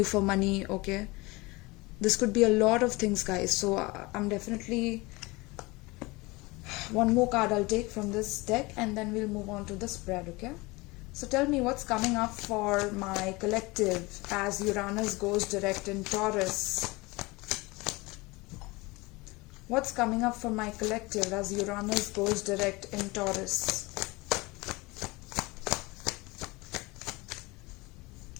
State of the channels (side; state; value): right; quieter; 23.5 dB